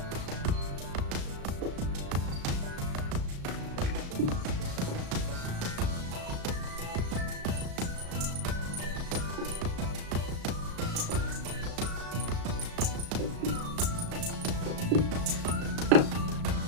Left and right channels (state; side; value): late; left; 35 ms